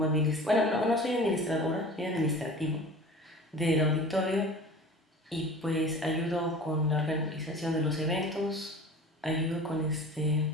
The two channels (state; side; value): normal; both; correlation 0.40